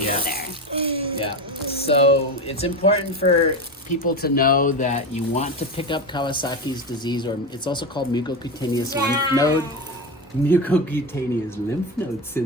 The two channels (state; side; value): normal; both; correlation 0.19